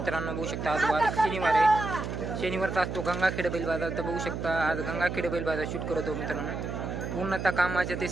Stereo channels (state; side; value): noise; right; hum, 5 dB below the sound